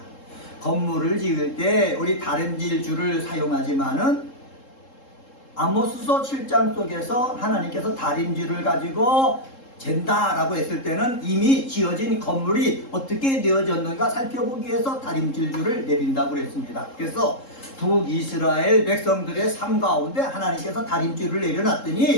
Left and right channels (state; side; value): late; right; 3.7 ms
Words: 건물을 지을 때 우리 다림질 줄을 사용하지만은 아모스서 7장 속에서 하나님께서 다림줄을 가지고 잰다라고 했을 때는 이미 지어진 건물이 어떻게 되어졌는가 살펴보기 위해서 다림질 줄을 내린다고 그랬습니다. 그래서 북이스라엘 백성들의 삶 가운데 하나님께서 다림줄을